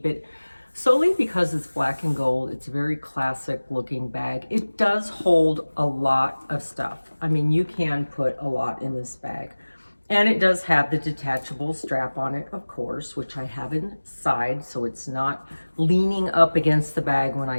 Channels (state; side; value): inverted; both; correlation -1.00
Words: it solely because it's black and gold. It's a very classic looking bag. It does hold a lot of stuff. I mean, you can put a lot in this bag. And it does have the detachable strap on it, of course, which I have inside, so it's not leaning up against the bag when I